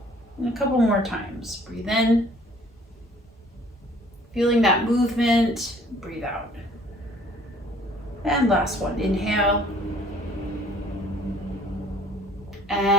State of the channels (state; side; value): normal; both; correlation 0.56